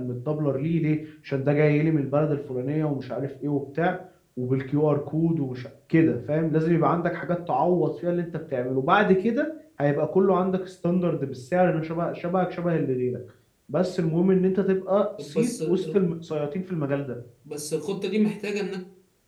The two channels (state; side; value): identical; both; correlation 1.00